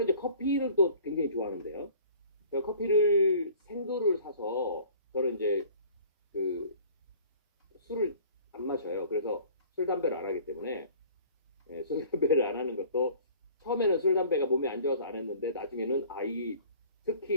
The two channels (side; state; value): both; inverted; correlation -0.49